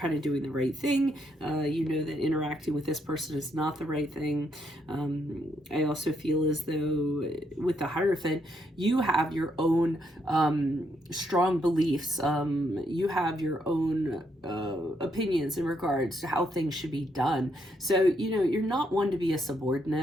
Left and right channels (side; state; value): both; normal; correlation 0.76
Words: of doing the right thing. You know that interacting with this person is not the right thing. I also feel as though with the Hierophant, you have your own strong beliefs. You have your own opinions in regards to how things should be done. So, you know, you're not one to be a